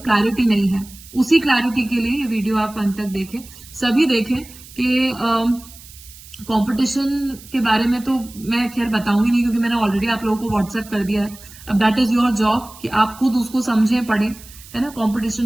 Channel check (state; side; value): noise; right; hiss, 19 dB below the sound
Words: क्लैरिटी नहीं है। उसी क्लैरिटी के लिए ये वीडियो आप अंत तक देखें, सभी देखें कि कंपटीशन के बारे में तो मैं खैर बताऊंगी नहीं, क्योंकि मैंने ऑलरेडी आप लोगों को व्हाट्सएप कर दिया है। अब दैट इज योर जॉब कि आप खुद उसको समझें, पढ़ें, है ना।